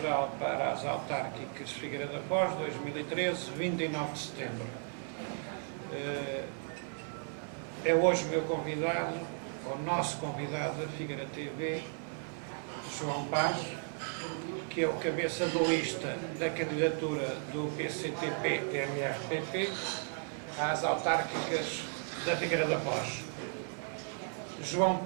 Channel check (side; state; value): left; silent; 54 dB below the other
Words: para as autárquicas Figueira da Foz, 2013, 29 de setembro. É hoje o meu convidado, o nosso convidado da Figueira TV, João Paz, que é o cabeça de lista da candidatura do PCTP-MRPP às autárquicas da Figueira da Foz. João